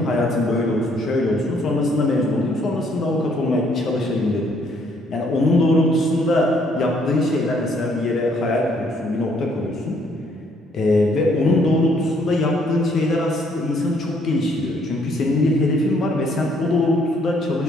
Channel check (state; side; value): normal; both; correlation 0.67